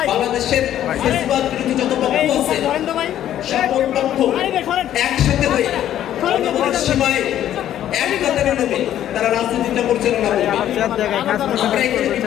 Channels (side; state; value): right; quieter; 11.5 dB